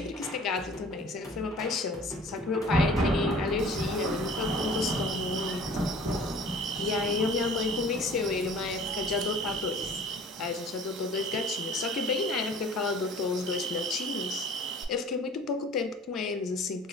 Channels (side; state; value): both; normal; correlation 0.47